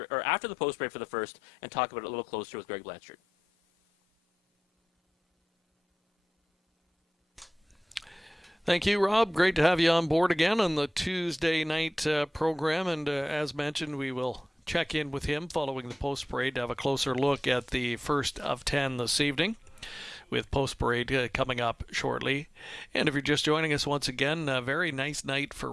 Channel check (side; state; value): both; normal; correlation 0.94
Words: break for the first and talk about it a little closer with Greg Blanchard. Thank you, Rob. Great to have you on board again on the Tuesday night program. And as mentioned, we will check in with him following the post parade to have a closer look at the first of 10 this evening, with post parade coming up shortly. And if you're just joining us once again, a very nice night for